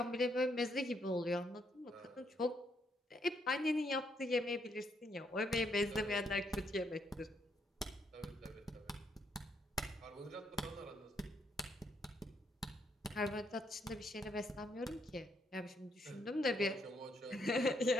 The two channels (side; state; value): both; normal; correlation 0.74